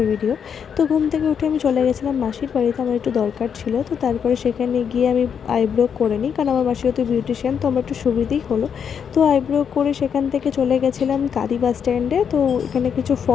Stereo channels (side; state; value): right; quieter; 7.4 dB